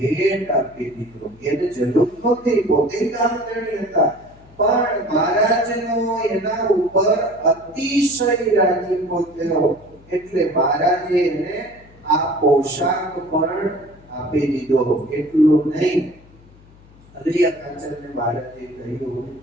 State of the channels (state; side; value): noise; left; hum, 25 dB below the sound